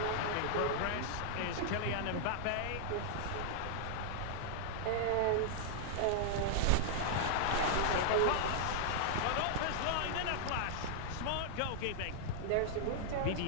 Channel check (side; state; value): both; different; correlation -0.01